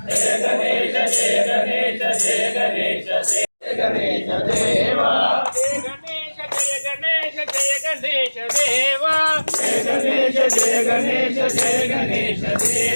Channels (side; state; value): both; inverted; correlation -1.00